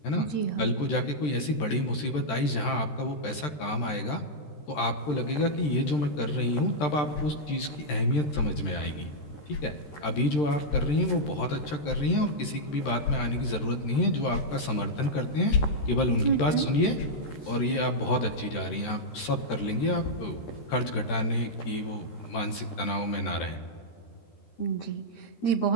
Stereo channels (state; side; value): late; right; 13 ms